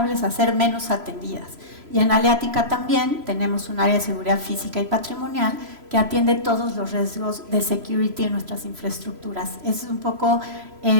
a ser menos atendidas. Y en Aleática también tenemos un área de seguridad física y patrimonial que atiende todos los riesgos de security en nuestras infraestructuras. Esa es un poco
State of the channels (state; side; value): late; left; 3.0 ms